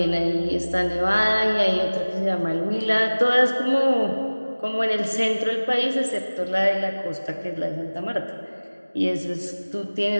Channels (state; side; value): inverted; both; correlation -1.00